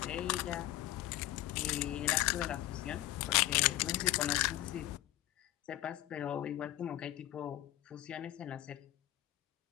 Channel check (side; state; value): right; quieter; 15.3 dB